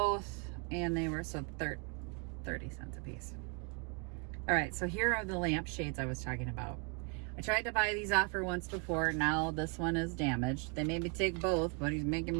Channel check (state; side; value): quieter; left; 35.4 dB